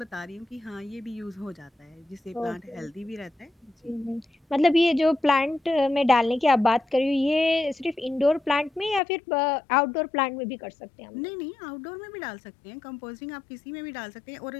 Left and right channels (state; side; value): drops out; right; at 9.0 s